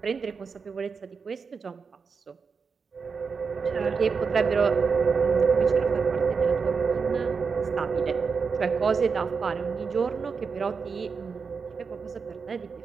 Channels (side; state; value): left; quieter; 5.4 dB